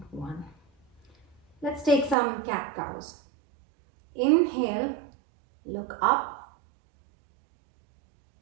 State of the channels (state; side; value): drops out; left; at 2.1 s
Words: 1. Let's take some cat cows. Inhale, look up.